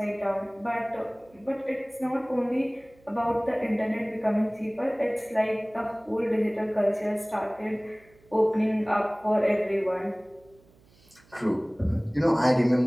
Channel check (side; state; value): right; noise; hum, 29 dB below the sound